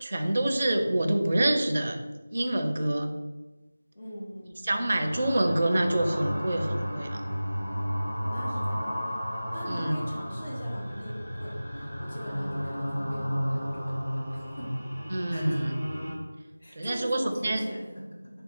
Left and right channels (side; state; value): both; inverted; correlation -0.97